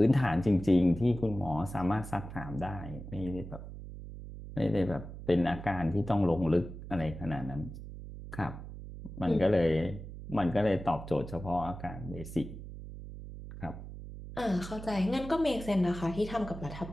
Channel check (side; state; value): right; noise; hum, 11 dB below the sound